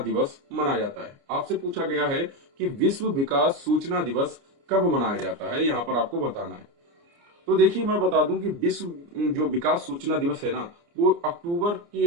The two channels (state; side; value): late; left; 29 ms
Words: मनाया जाता है। आपसे पूछा गया है कि विश्व विकास सूचना दिवस कब मनाया जाता है, यहाँ पर आपको बताना है। तो देखिए, मैं बता दूं कि विश्व जो विकास सूचना दिवस है ना, वो अक्टूबर के